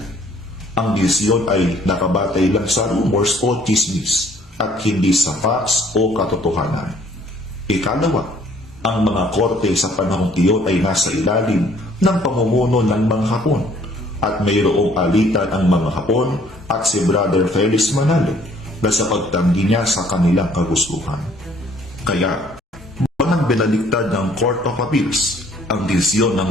Ang desisyon ay nakabatay lang sa rumors o chismis at hindi sa facts o katotohanan. Ikalawa, ang mga korte sa panahong iyon ay nasa ilalim ng pamumuno ng mga Hapon at mayroong alitan ang mga Hapon at si Brother Felix Manalo na sa pagtanggi niya sa kanilang kagustuhan. Kaya, walang binaliktad ng Court of Appeals ang desisyon ng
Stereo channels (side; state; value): both; normal; correlation 0.60